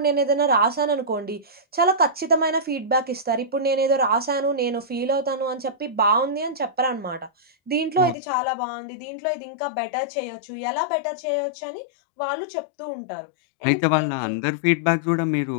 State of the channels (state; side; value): drops out; right; at 8.2 s